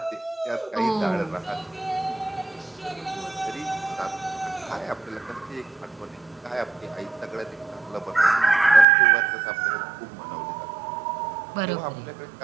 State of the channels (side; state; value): left; drops out; at 8.8 s